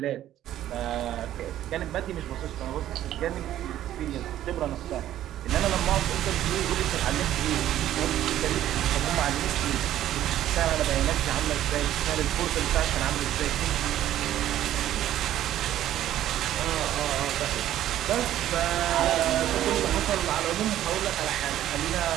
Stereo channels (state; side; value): quieter; left; 12.5 dB